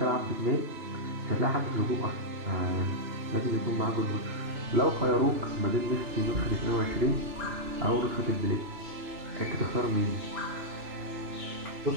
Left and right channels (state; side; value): late; left; 2.9 ms